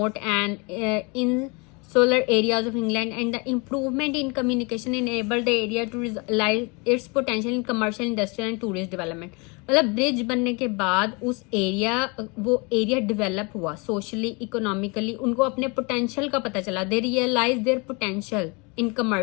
and insular areas of England, and the improvement in communication enabled the area to realize its potential in commercial, industrial and tourist development। मतलब bridge बनने के बाद वो area develop हुआ socially, economically, उनको अपने potential का पता चला। They realise their potential in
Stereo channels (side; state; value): right; quieter; 29.9 dB